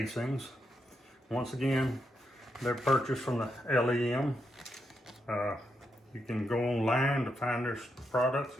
Once again, they're purchased from the LEM. You can go online to find their products.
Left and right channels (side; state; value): both; normal; correlation 0.82